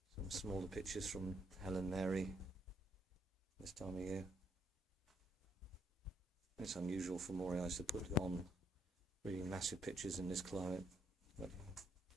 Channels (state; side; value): normal; both; correlation 0.72